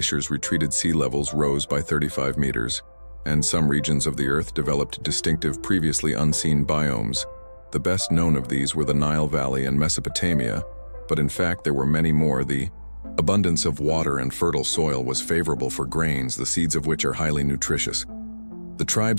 retreated, sea levels rose by 35 meters, and some regions of the Earth developed distinctive, previously unseen biomes. The best known of these were the Nile Valley and Mesopotamia, but in fact there were many more. The abundance of water and fertile soil was favorable for grains, the seeds of which are highly nutritious. The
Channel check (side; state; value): both; inverted; correlation -1.00